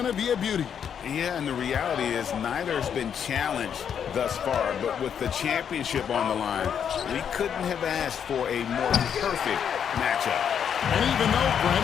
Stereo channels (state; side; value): quieter; right; 8.1 dB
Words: to be a beauty. Yeah, and the reality is neither has been challenged thus far, but with the championship on the line, we couldn't have asked for a more perfect matchup. And even though,